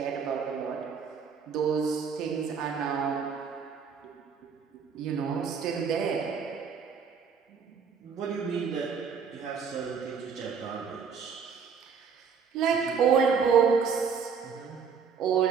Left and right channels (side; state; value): left; quieter; 6.3 dB